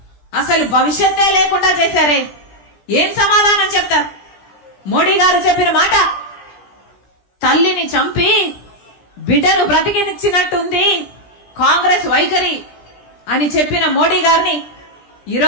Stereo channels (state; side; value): late; right; 17 ms